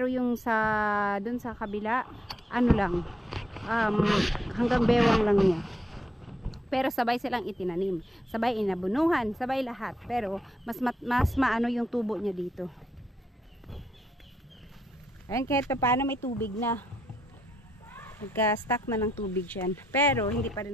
yung sa dun sa kabila, ano lang, hanggang bewang lang niya. Pero sabay silang itinanim, sabay inabunuhan, sabay lahat. Pero mas maano yung tubo niya dito. Ayan, kahit paano may tubig na. Nagka-stack na ng tubig yan. Pero hindi pa rin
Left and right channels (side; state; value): both; normal; correlation 0.79